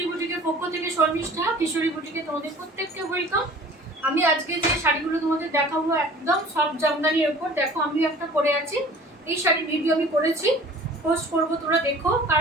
বুটিকের পক্ষ থেকে শর্মিষ্ঠা। কিশোরী বুটিকে তোমাদের প্রত্যেককে ওয়েলকাম। আমি আজকে যে শাড়িগুলো তোমাদের দেখাবো একদম সফট জামদানির উপর। দেখো আমি একটা পরে আছি, এই শাড়ির ভিডিও আমি করেছি, পোস্ট করবো, তোমরা দেখো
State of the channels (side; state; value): both; normal; correlation 0.46